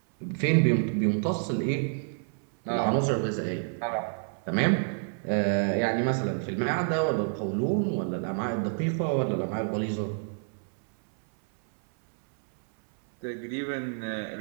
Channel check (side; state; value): left; silent; 59 dB below the other